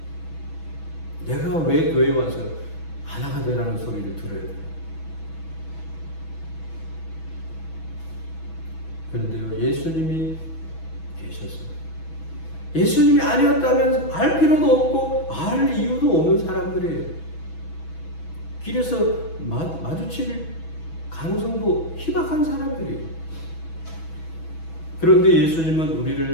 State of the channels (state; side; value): late; right; 6.1 ms